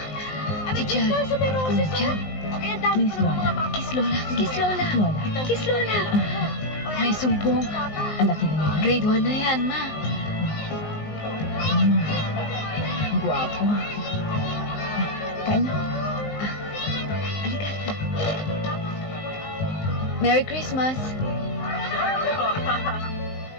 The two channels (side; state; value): right; late; 19 ms